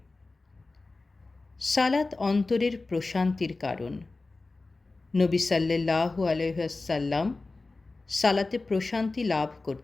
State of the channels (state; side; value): quieter; right; 3.5 dB